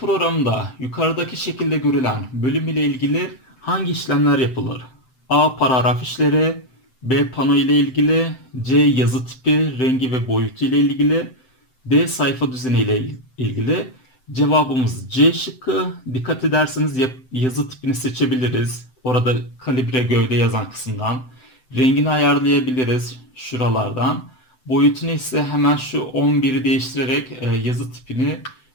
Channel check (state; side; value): late; right; 7.8 ms